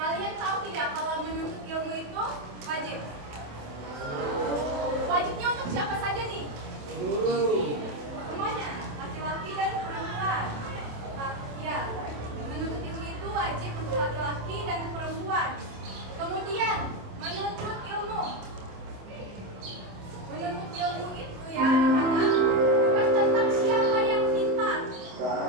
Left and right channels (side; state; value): left; late; 27 ms